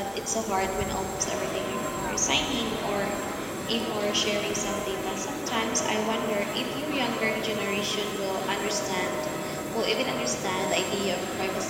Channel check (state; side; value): identical; both; correlation 1.00